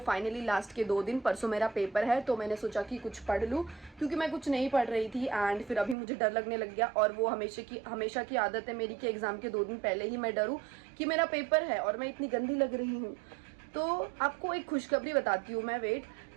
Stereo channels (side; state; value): left; drops out; at 6.0 s